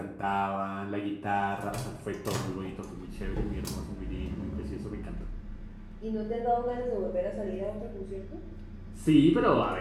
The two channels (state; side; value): identical; both; correlation 1.00